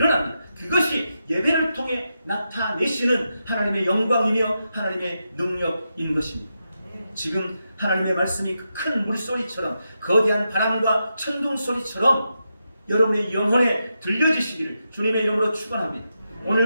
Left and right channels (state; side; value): inverted; both; correlation -0.87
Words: 그것이 예배를 통해 나타내시는 하나님의 영광이며 하나님의 능력인 것입니다. 지금 하나님의 말씀이 큰 물소리처럼, 거대한 바람과 천둥 소리처럼 여러분의 영혼에 들려지시기를 주님의 이름으로 축원합니다.